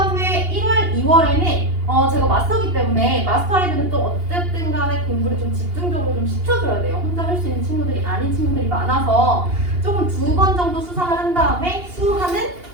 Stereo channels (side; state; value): left; late; 2.8 ms